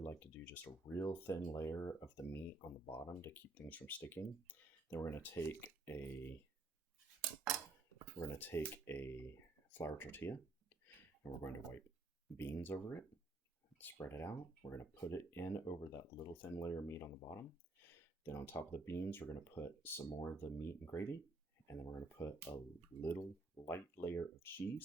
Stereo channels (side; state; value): left; quieter; 3.2 dB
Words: like to do just a real thin layer of the meat on the bottom to keep things from sticking. Then we're going to take a flour tortilla, and we're going to wipe beans over it, spread it out. We're going to put it in over that little thin layer of meat on the bottom. Then on top of the beans, we're going to put some more of the meat and gravy, and then we're going to put a little light layer of